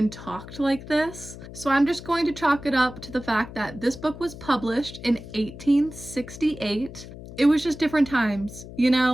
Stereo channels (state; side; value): noise; left; hum, 14 dB below the sound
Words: talked like this. So I'm just going to chalk it up to the fact that this book was published in 1868. It was just different times, you